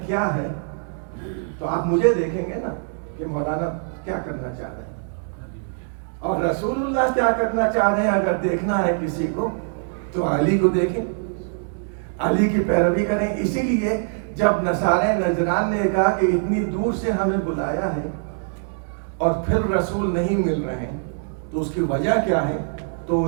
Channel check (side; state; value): left; silent; digital silence